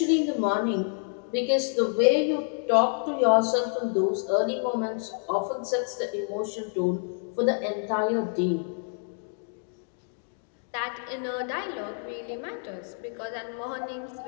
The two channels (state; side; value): silent; right; 56 dB below the other